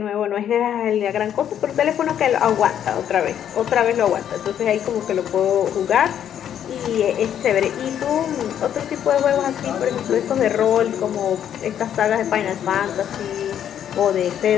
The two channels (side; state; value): right; quieter; 9.7 dB